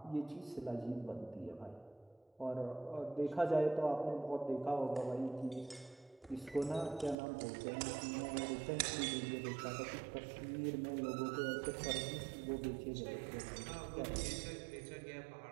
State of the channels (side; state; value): left; drops out; at 7.2 s